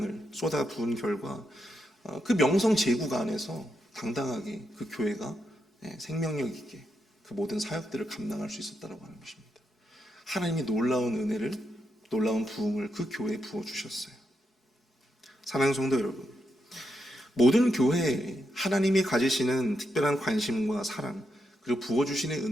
쏟아 부은 결과 그 명성 제국 안에서 당당하게 그 교회가 생명력 있게 그 모든 사역들을 감당할 수 있었다고 하는 것입니다. 하나님이 놀라운 은혜를, 놀라운 부흥을 그 교회에 부어주셨어요. 사랑하는 성도 여러분, 모든 교회에 하나님이 가지시는 특별한 관심과 사랑, 그리고 부어주시는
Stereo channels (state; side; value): normal; both; correlation 0.82